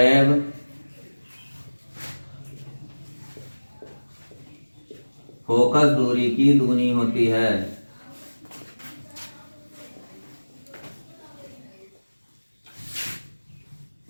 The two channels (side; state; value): both; inverted; correlation -1.00